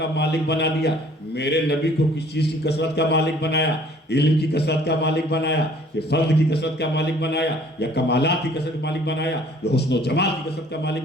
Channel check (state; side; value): normal; both; correlation 0.56